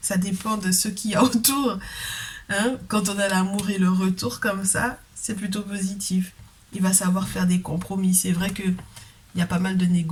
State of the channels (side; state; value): both; identical; correlation 1.00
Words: dépend de ce qu'il y a autour. Hein, quand on a l'amour et le retour comme ça, c'est plutôt positif. Il va savoir faire des compromis. C'est vrai qu'il y a pas mal de